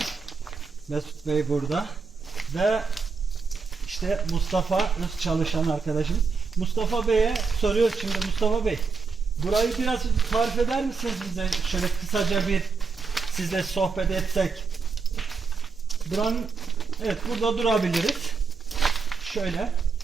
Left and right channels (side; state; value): left; quieter; 5.0 dB